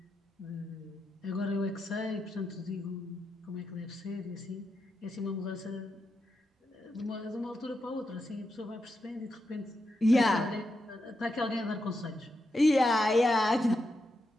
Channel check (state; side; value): normal; both; correlation 0.86